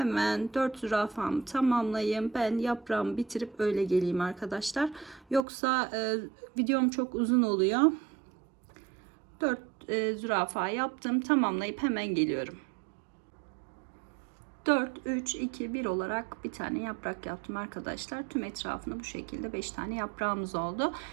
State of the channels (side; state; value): left; drops out; at 5.5 s